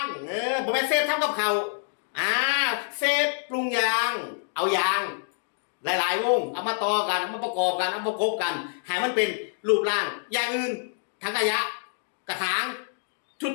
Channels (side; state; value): right; silent; digital silence